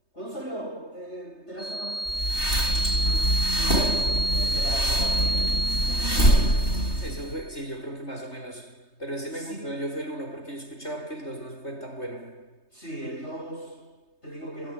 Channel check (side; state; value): right; late; 3.3 ms